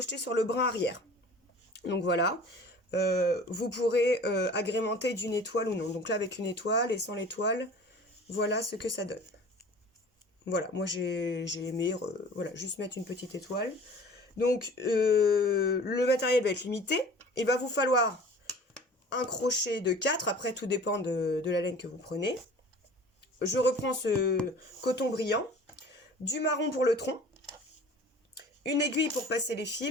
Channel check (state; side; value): normal; both; correlation 0.44